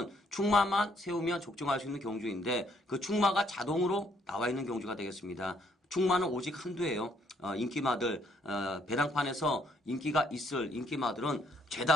충마만 세우면 적중할 수 있는 경주인데, 그 충마가 자동으로 나와 있는 경주가 되겠습니다. 충마는 오직 한두예요. 인기마들 배당판에서 인기가 있을 인기마들은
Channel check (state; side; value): normal; both; correlation 0.69